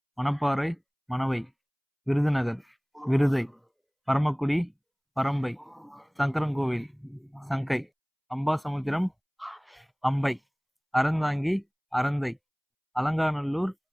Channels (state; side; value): identical; both; correlation 1.00